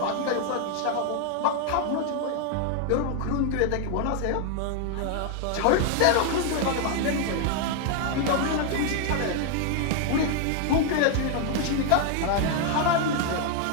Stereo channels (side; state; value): both; different; correlation 0.00